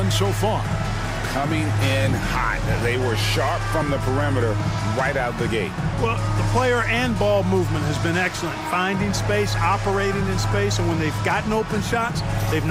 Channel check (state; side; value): identical; both; correlation 1.00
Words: so far? Coming in hot. They were sharp from the perimeter right out the gate. Well, the player and ball movement has been excellent. Finding space, operating in space, and when they've gotten open shots, they've